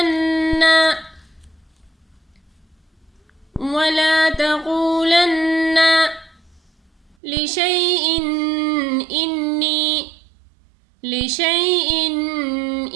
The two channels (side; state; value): left; drops out; at 7.2 s